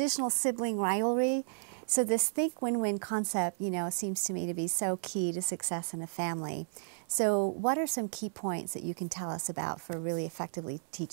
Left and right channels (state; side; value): silent; left; 56 dB below the other